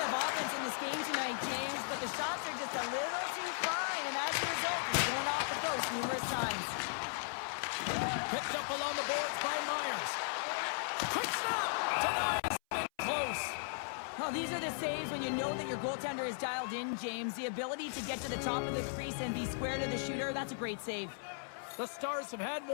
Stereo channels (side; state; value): right; silent; 53 dB below the other